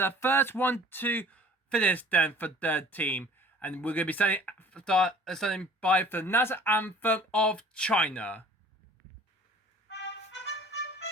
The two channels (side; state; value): both; normal; correlation 0.49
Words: first 1-2 finish then for their team. And we're going to be standing by for the national anthem of China.